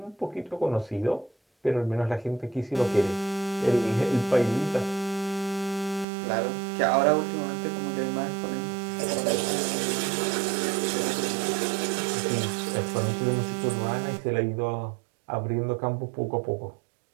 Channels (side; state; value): left; drops out; at 6.1 s